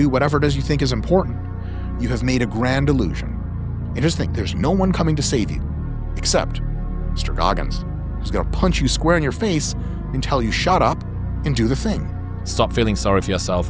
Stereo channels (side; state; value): both; identical; correlation 1.00